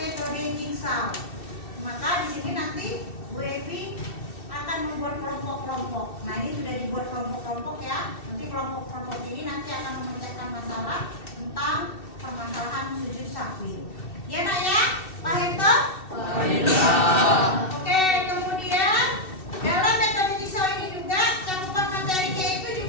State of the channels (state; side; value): late; right; 2.7 ms